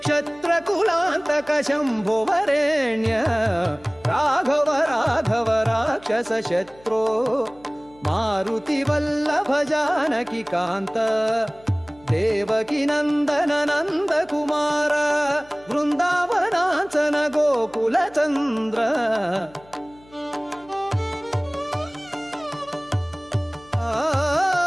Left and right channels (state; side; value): noise; left; hum, 26 dB below the sound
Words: क्षत्रकुलान्तक शम्भो वरेण्य राघव राघव राक्षस शत्रो मारुति वल्लभ जानकी कांत देवकी नंदन नंद कुमार वृंदावनांचन गोकुल चंद्र